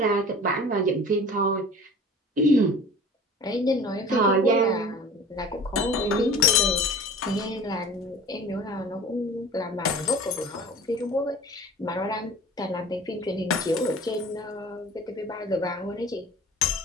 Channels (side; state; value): both; normal; correlation 0.41